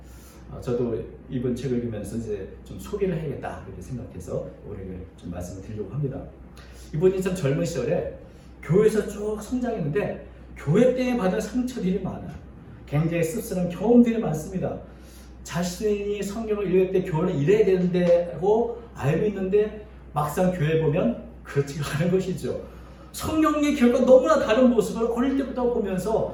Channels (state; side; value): identical; both; correlation 1.00